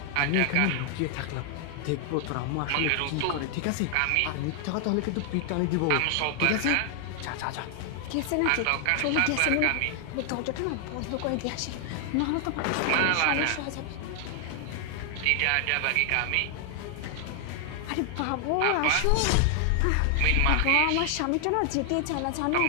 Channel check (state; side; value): different; both; correlation 0.00